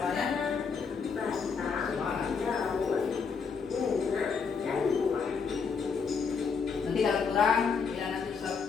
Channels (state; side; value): quieter; right; 5.7 dB